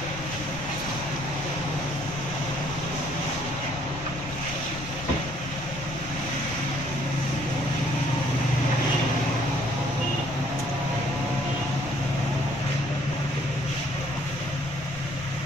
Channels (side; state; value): left; noise; rumble, 15 dB below the sound